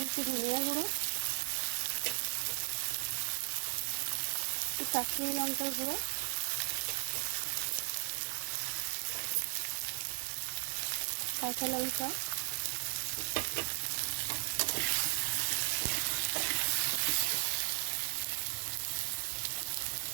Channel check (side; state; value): left; silent; digital silence